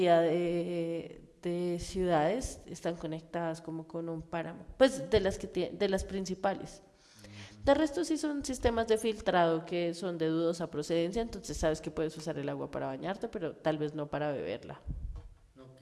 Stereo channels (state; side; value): identical; both; correlation 1.00